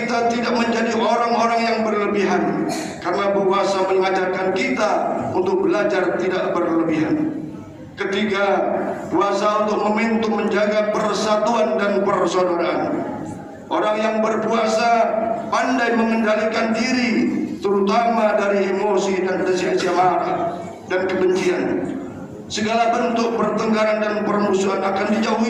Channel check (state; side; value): identical; both; correlation 1.00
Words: tidak menjadi orang-orang yang berlebihan, karena puasa mengajarkan kita untuk belajar tidak berlebihan. Ketiga, puasa untuk momentum menjaga persatuan dan persaudaraan. Orang yang berpuasa pandai mengendalikan diri, terutama dari emosi dan rasa marah dan kebencian. Segala bentuk pertengkaran dan permusuhan akan